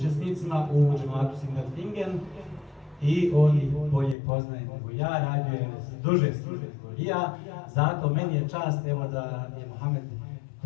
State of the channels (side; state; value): right; drops out; at 4.2 s